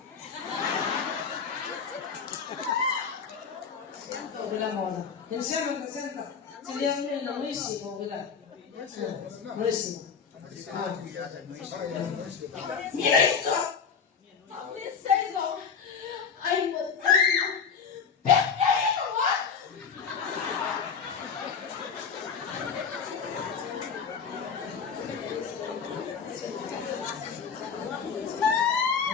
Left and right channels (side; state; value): right; quieter; 6.3 dB